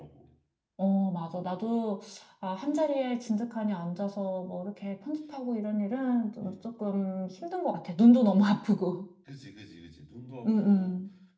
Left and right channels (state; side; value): identical; both; correlation 1.00